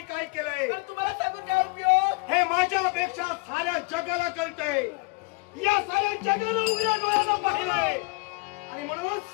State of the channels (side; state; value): right; quieter; 27.7 dB